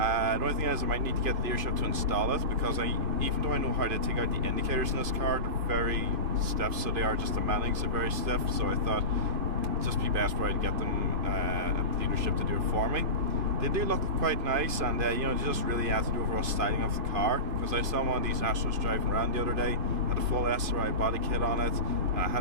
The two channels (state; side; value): late; left; 2.5 ms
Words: only thing is I might need to get the dealership to install it because even though I know how to take out the indicators in this car, they're very stiff, so they are just the mountings are very stiff, so I thought it'd just be best for I to get them at the dealership to do it for me. They do look quite nice, and they just really add to the overall styling of the car, because I saw one of these Astros driving around the other day, had a full SRI body kit on it, and I